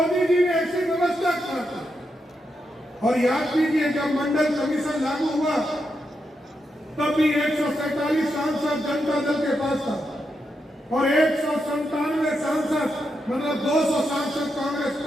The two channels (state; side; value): normal; both; correlation 0.84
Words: जी ने ऐसी व्यवस्था कर दी। और याद कीजिए, जब मंडल कमीशन लागू हुआ तब भी 147 सांसद जनता दल के पास था और 197 सांसद, मतलब 200 सांसद कांग्रेस